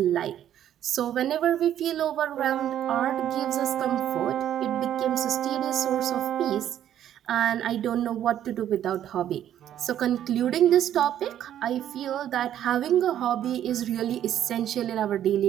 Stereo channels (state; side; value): quieter; left; 10.9 dB